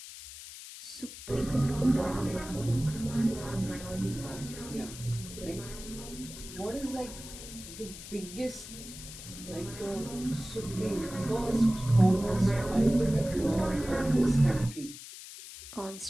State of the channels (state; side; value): noise; left; hiss, 13 dB below the sound